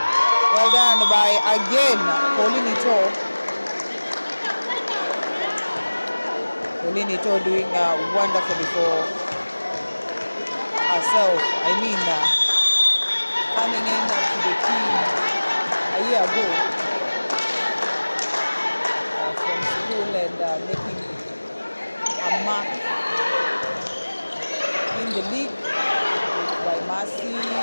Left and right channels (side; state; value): both; inverted; correlation -1.00